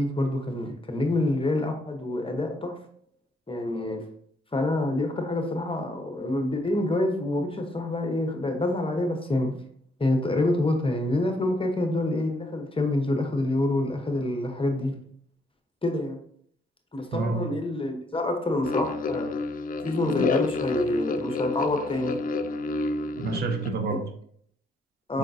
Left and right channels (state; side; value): normal; both; correlation 0.72